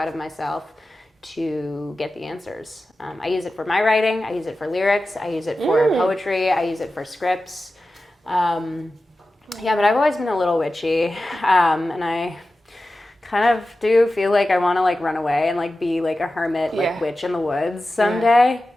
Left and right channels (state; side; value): normal; both; correlation 0.94